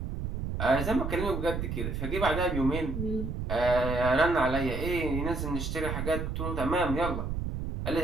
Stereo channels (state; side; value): noise; right; rumble, 3 dB below the sound